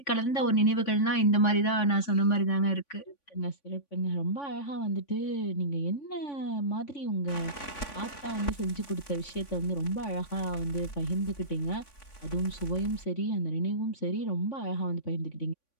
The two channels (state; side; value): late; right; 3.5 ms